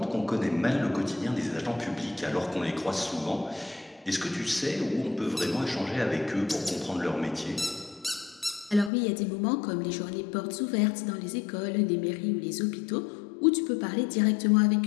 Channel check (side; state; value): right; drops out; at 8.9 s